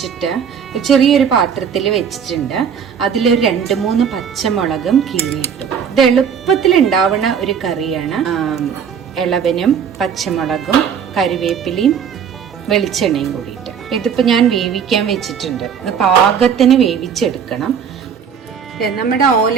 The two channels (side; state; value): left; quieter; 7.4 dB